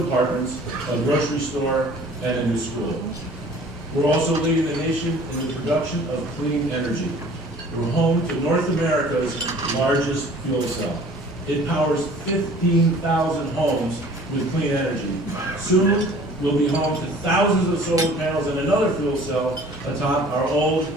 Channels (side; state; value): both; normal; correlation 0.49